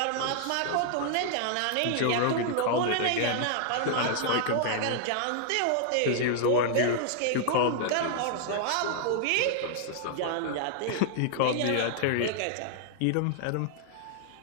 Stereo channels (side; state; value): both; different; correlation -0.01